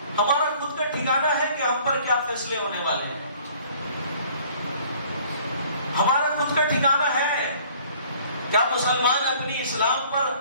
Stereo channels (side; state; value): both; inverted; correlation -0.55